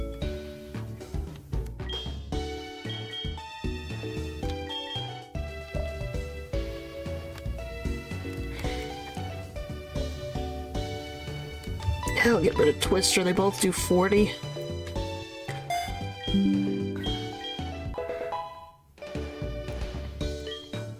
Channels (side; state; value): both; identical; correlation 1.00